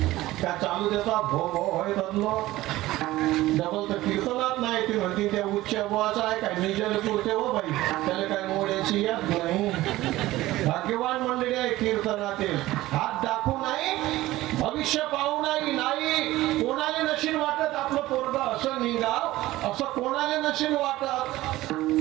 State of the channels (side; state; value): left; quieter; 16.9 dB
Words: का चालू देता? भो भो होय बदलो डबल तर कीर्तनात नाही. ती म्हणते त्या उच्च बुवाचा आहे काय निजल पुरते हो बाई, त्याला काय मोड्याची याद नाही. भाग्यवान मंडळी आहे कीर्तनातील. हात दाखवू नाही, भविष्य पाहू नाही. नाही कोणाला नशीन वाटत आपलं पोरग असं निघाव, असं कोणाला नशीन वाटत.